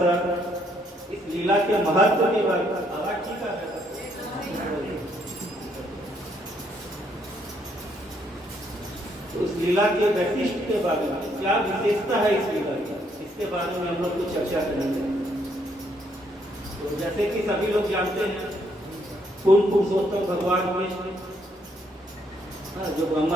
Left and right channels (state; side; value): normal; both; correlation 0.71